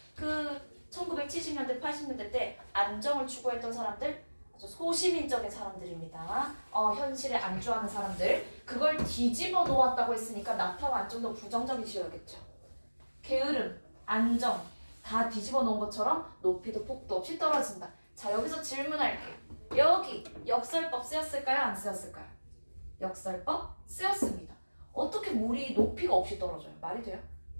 1970년대 80년대 때 안정을 추구했던 사람들 아주 소시민적인 사람들입니다. 현실에 안주하는 사람들 그걸 뒤집어 놓았다고 했으니까 나타와 안정도 부정적이셔야겠죠. 게으름, 안정 다 뒤집어 놓은 것처럼 높이도 폭도 없이 떨어진다. 자 여기서 질문할게요. 여기 역설법 쓰였을까요? 안 쓰였을까요? 역설법 쓰였습니다. 어떻게 물이 높이가 없이 떨어져요? 말이 돼요?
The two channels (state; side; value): inverted; both; correlation -1.00